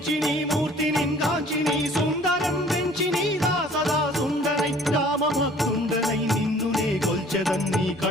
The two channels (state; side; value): normal; both; correlation 0.53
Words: నీ మూర్తిని గాంచి నీ సుందరం వెంచి నీ దాసదా సుందరై రామభక్తుండనై నిన్నునే కొల్చెదన్నీ